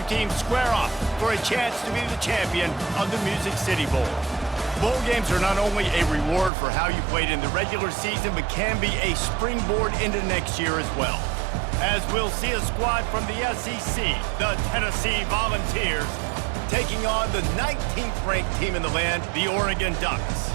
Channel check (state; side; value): drops out; left; at 6.5 s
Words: teams square off for a chance to be the champion of the Music City Bowl. Bowl games are not only a reward for how you played in the regular season, but can be a springboard into next year as well. As we'll see a squad from the SEC, the Tennessee Volunteers, taking on the 19th ranked team in the land, the Oregon Ducks.